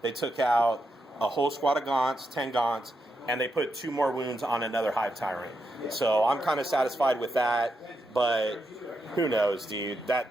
took out a whole squad of Gaunts, 10 Gaunts. And they put 2 more wounds on another Hive Tyrant. So I'm kind of satisfied with that. But who knows, dude?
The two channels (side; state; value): both; normal; correlation 0.84